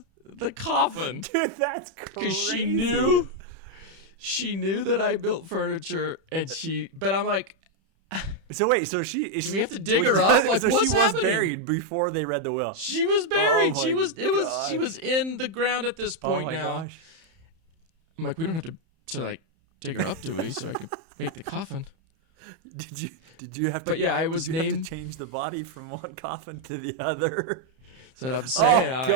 the coffin. Dude, that's crazy. Because she knew that I built furniture, but I'm like, so wait, do we have to dig her up? Like, so what's she happening? Was buried before they read the will. She was buried. Oh, She was in the ground at this point now. Gosh. I'm like, we don't have to dig her up, do we? So I could make the coffin. Did you have to? But yeah, I was named. Have to change the body from one coffin to the other. That's what I'm saying. Oh,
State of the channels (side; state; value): left; late; 31 ms